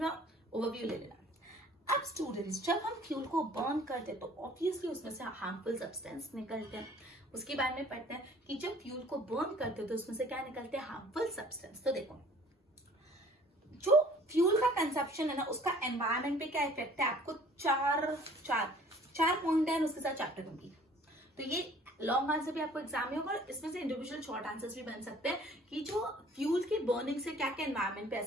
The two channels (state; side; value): normal; both; correlation 0.53